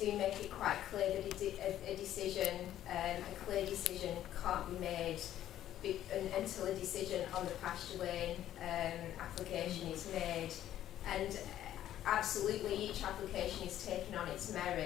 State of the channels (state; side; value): quieter; right; 12.1 dB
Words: make it quite clear that a clear decision can't be made until a decision on the pasture lane application is made. And absolutely each application is taken on its